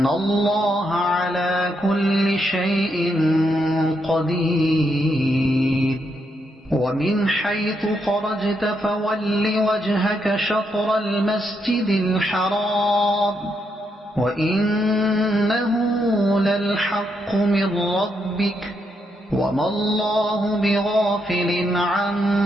الله على كل شيء قدير ومن حيث خرجت فول وجهك شطر المسجد الحرام وإنه للحق من ربك وما الله بغافل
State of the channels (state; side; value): normal; both; correlation 0.79